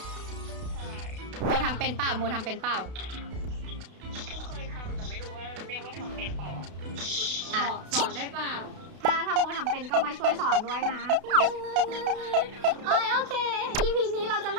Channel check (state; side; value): late; left; 32 ms